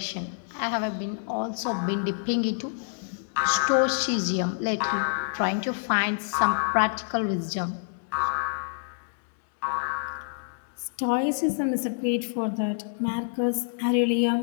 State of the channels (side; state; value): right; silent; digital silence